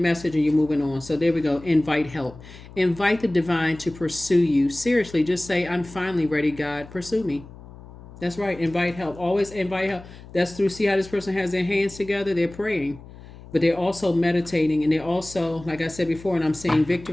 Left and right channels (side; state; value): left; noise; hum, 18 dB below the sound